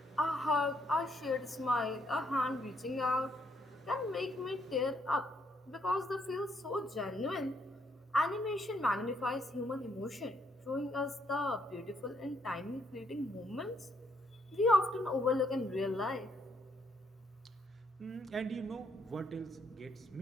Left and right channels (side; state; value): both; normal; correlation 0.72